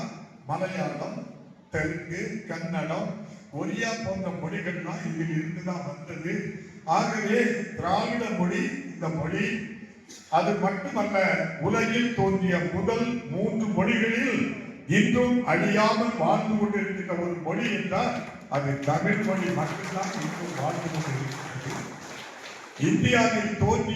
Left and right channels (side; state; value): both; identical; correlation 1.00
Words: மலையாளம், தெலுங்கு, கன்னடம், ஒரியா போன்ற மொழிகள்லாம் இதில் இருந்துதான் வந்தது. ஆகவே திராவிட மொழி இந்த மொழி அது மட்டுமல்ல, உலகில் தோன்றிய முதல் 3 மொழிகளில் இன்றும் அழியாமல் வாழ்ந்து கொண்டிருக்கின்ற ஒரு மொழி என்றால் அது தமிழ் மொழி மட்டும்தான் இன்றும் வாழ்ந்து கொண்டிருக்கிறது. இந்தியாவில்